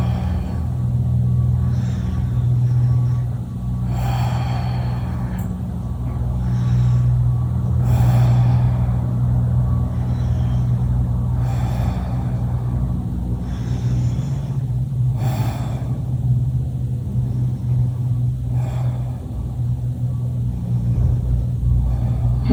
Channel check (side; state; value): both; identical; correlation 1.00